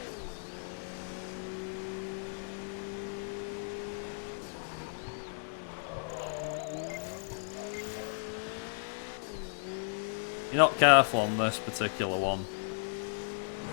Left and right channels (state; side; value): silent; right; digital silence